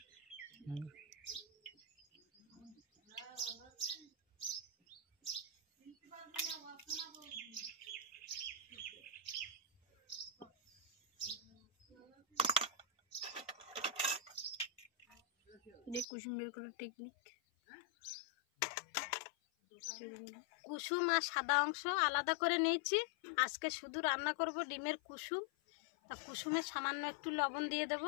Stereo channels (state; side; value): drops out; right; at 16.1 s